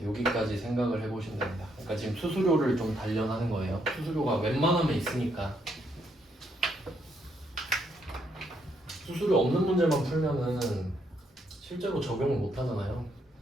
여기까지 생각을 해보시면 됩니다. 그러니까 지금 수수료를 좀 단련하는 거예요. 수수료가 웬만하면 있으니까. 수수료 없는 문제만 풀면은 실제로 적용을 못 하잖아요.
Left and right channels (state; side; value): normal; both; correlation 0.74